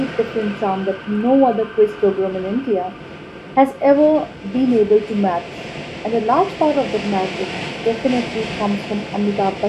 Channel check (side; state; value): both; identical; correlation 1.00